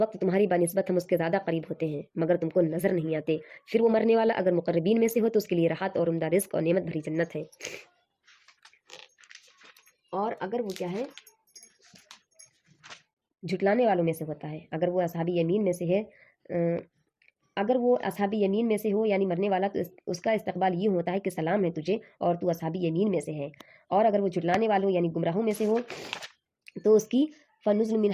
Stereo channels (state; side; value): identical; both; correlation 1.00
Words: तुम्हारी बनिस्बत हम उसके ज़्यादा करीब होते हैं मगर तुमको नज़र नहीं आते। फिर वो मरने वाला अगर मुक़र्रबीन में से हो तो उसके लिए राहत और उम्दा रिज़्क़ और नेमत भरी जन्नत है, और अगर वो क्या है झुटलाने वालों में से होता है, अगर वो असहाबी यमीन में से है, अगर वो असहाबी यमीन में से हो यानी मरने वाला, तो उसका इस्तकबाल ये होता है कि सलाम है तुझे और तू असहाबी यमीन में से है। और अगर वो झुटलाने वालों यानी गुमराहों में से हो तो उसकी फ़नुज़ुल मिन